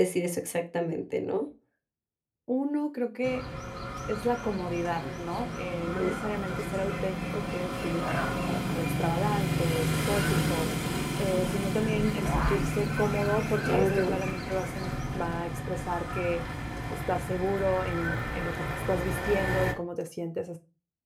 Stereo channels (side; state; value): both; identical; correlation 1.00